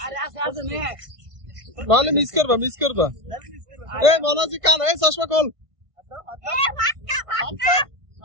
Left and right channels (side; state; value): left; late; 1.5 ms